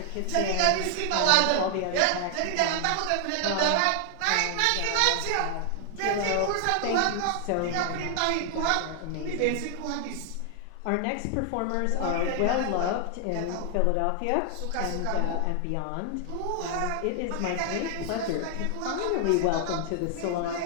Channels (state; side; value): different; both; correlation 0.00